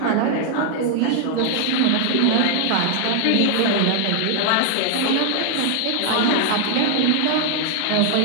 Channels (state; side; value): different; both; correlation 0.00